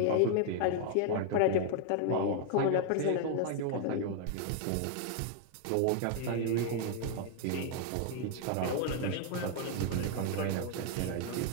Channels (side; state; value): both; different; correlation 0.00